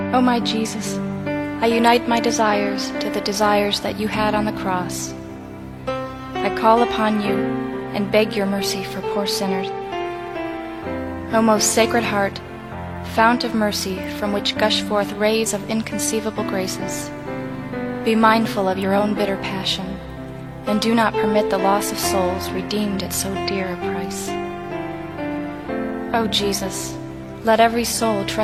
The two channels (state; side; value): identical; both; correlation 1.00